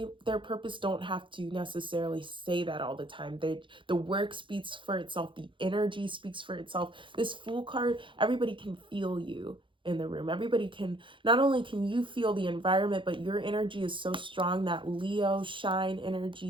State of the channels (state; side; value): late; left; 0.24 ms